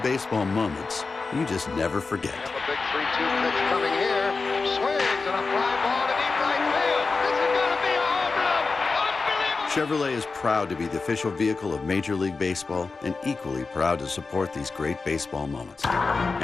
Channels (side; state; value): right; quieter; 4.2 dB